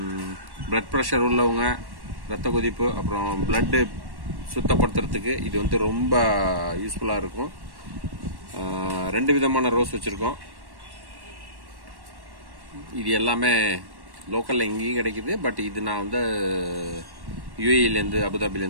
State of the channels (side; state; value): left; late; 1.1 ms